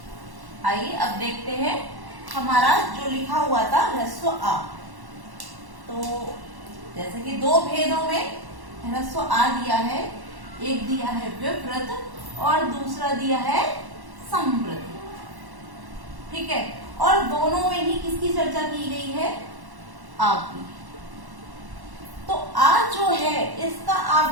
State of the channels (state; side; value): late; left; 1.1 ms